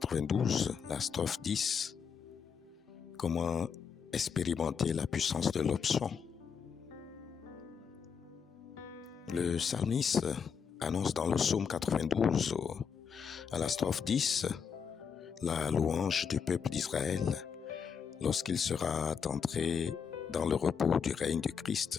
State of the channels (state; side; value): quieter; right; 6.7 dB